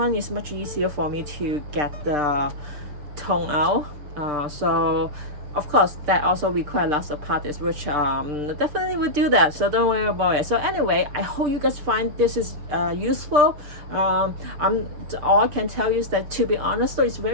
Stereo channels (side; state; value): left; late; 6.7 ms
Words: is much easier for me to get the tone out. So of course that also requires lots of practice, which definitely will do that, so don't worry about it. So anyway, I hope you guys find this is useful. All I can tell you is that, to be honest though, it's